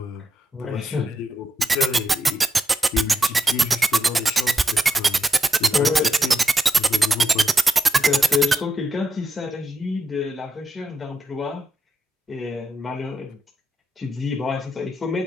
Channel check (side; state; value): both; normal; correlation 0.85